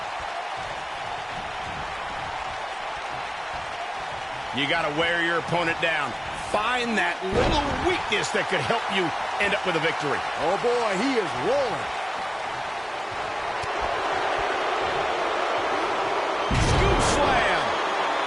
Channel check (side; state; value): both; identical; correlation 1.00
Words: You got to wear your opponent down. Find that little weakness that could help you end up with a victory. Oh, boy, he is rolling. Slam.